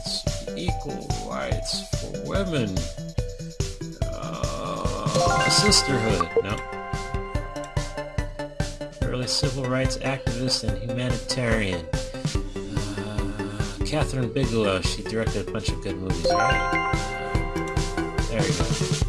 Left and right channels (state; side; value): identical; both; correlation 1.00